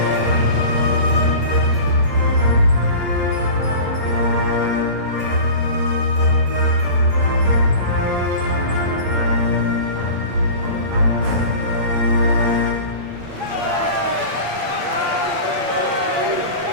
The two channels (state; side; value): late; left; 8.6 ms